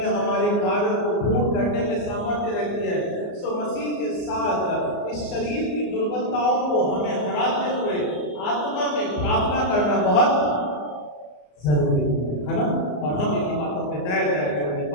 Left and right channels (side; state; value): right; late; 34 ms